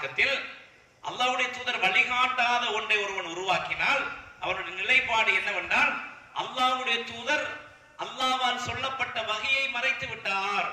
அல்லாஹ்வுடைய தூதர் வழிகாட்டாத ஒன்றை ஒருவன் உருவாக்கினால் அவருடைய நிலைப்பாடு என்னவென்றால் அல்லாஹ்வுடைய தூதர் அல்லாஹ்வால் சொல்லப்பட்ட வகையை மறைத்து விட்டார்.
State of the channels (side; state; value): both; identical; correlation 1.00